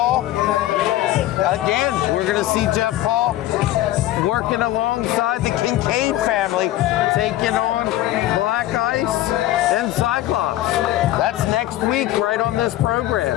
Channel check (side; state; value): right; quieter; 14.7 dB